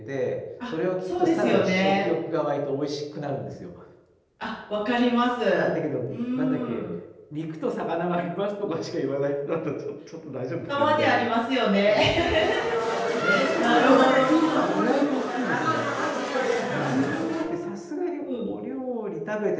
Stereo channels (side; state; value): both; identical; correlation 1.00